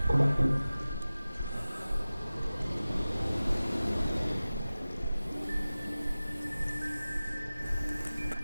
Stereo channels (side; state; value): both; inverted; correlation -0.97